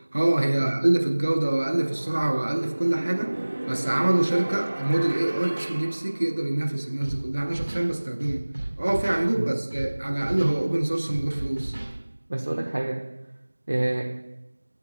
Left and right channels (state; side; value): inverted; both; correlation -1.00